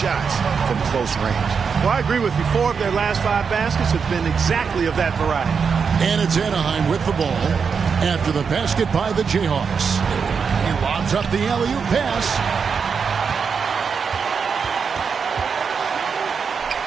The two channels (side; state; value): left; quieter; 6.0 dB